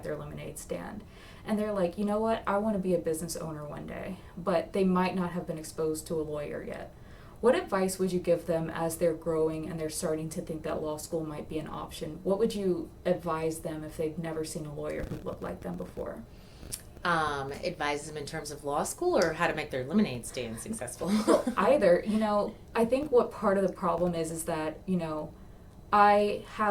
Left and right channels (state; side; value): identical; both; correlation 1.00